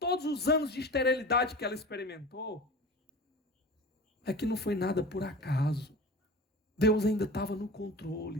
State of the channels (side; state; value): both; normal; correlation 0.35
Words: os anos de esterilidade que ela experimentou, é que não foi nada por acaso. Deus ainda estava no